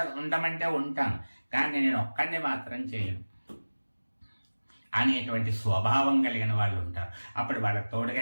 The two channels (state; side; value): inverted; both; correlation -1.00